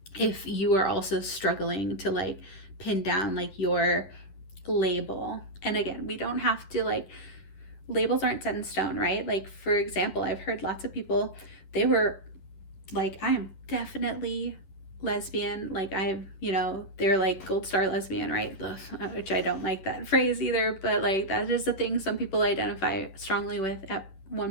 if you are also struggling to like pin down like your label. And again, we don't have to, like, labels aren't set in stone, right? Like, for example, I've heard lots of people, they were like, I am definitely lesbian, like I've, you know, they're like gold star lesbian, right? Ugh, which I don't like that phrase either, but like that is a thing some people identify strongly with at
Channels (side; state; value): right; late; 10 ms